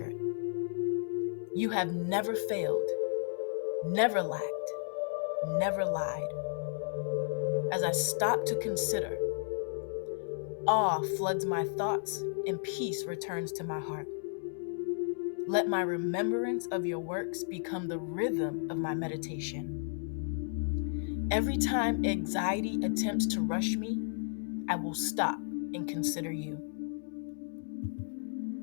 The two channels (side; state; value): right; silent; digital silence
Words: You have never failed, never lacked, never lied. As I stop to consider, awe floods my thoughts and peace returns to my heart. Let my remembrance of your works become the rhythm of my meditation. Every time anxiety attempts to rush me, I will stop and consider you.